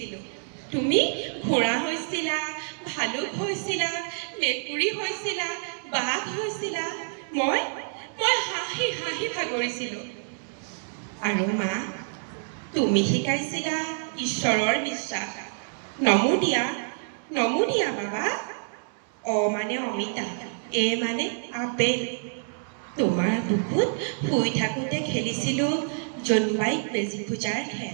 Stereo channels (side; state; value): left; silent; digital silence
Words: তুমি ঘোঁৰা হৈছিলা ভালুক হৈছিলা মেকুৰী হৈছিলা বাঘ হৈছিলা মই হাঁহ হাঁহি হাঁহি ভাগৰিছিলোঁ। আৰু মা, তুমি শিকাইছিলা ঈশ্বৰৰ বিশ্বাস। নমো দিয়া বাবা। অ মানে অমিতা, এ মানে আপেল। তোমাৰ বুকুত শুই থাকোঁতে খেলিছিলোঁ জোনবাইক বেজী পূজাৰ